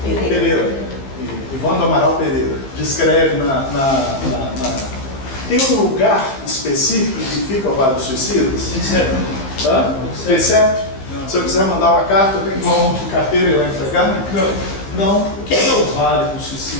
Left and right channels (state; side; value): late; right; 15 ms